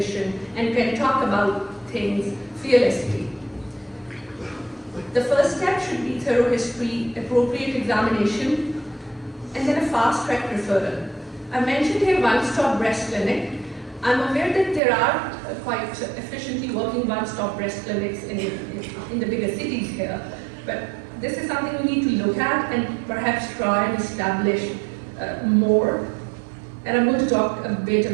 and can talk about things fearlessly. The first step should be thorough history, appropriate examination, and then a fast-track referral. I mentioned here one-stop breast clinic. I'm aware that there are quite efficiently working one-stop breast clinics in the bigger cities here, but this is something we need to look at and perhaps try and establish more. And I'm going to talk a bit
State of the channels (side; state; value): left; drops out; at 14.8 s